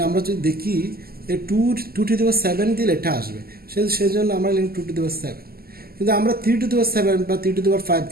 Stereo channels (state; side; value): late; left; 0.45 ms